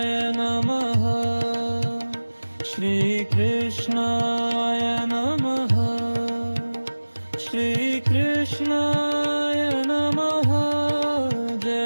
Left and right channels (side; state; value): both; inverted; correlation -1.00